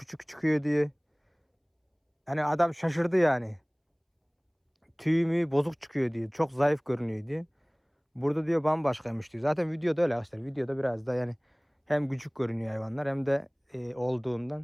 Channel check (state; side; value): identical; both; correlation 1.00